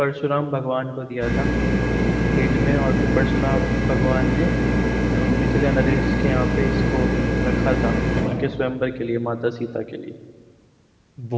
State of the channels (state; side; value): identical; both; correlation 1.00